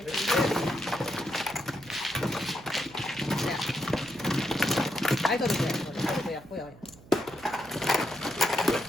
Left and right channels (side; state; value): right; noise; hum, 21 dB below the sound